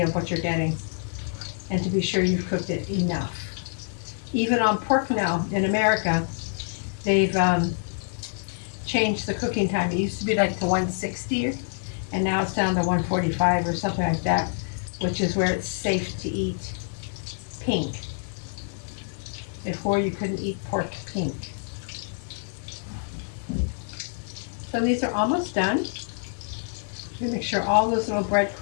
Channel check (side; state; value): right; silent; 61 dB below the other